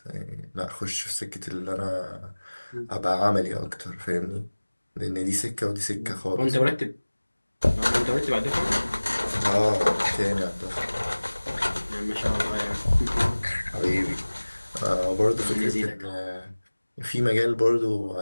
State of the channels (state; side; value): inverted; both; correlation -1.00